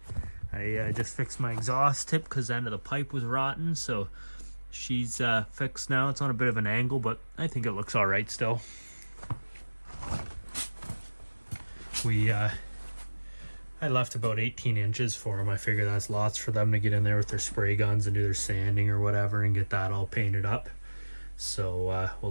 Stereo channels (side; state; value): both; inverted; correlation -1.00